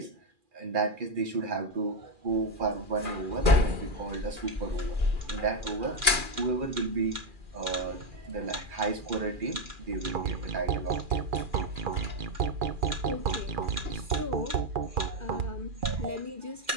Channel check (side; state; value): left; late; 2.4 ms